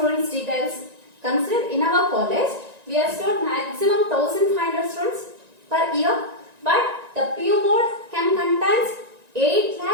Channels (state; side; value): late; left; 1.9 ms